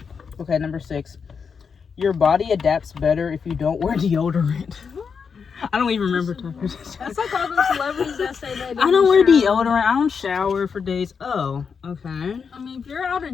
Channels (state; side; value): quieter; right; 6.0 dB